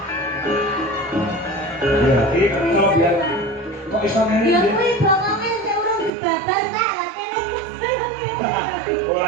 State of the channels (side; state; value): left; drops out; at 6.1 s